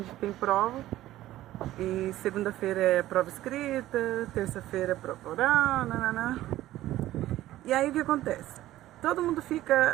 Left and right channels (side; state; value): left; quieter; 14.8 dB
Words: tem prova. E segunda-feira é prova escrita, terça-feira é prova oral, nananã. E aí o que acontece? Todo mundo